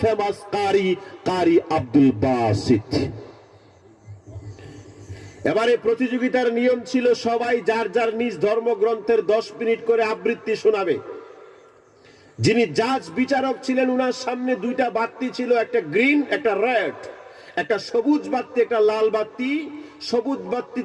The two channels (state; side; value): identical; both; correlation 1.00